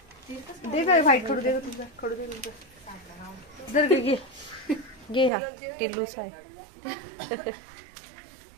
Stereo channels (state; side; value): drops out; left; at 5.3 s